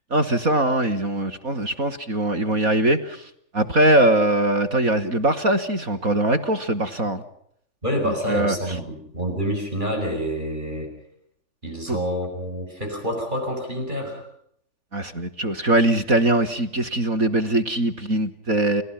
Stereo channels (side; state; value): left; late; 4.2 ms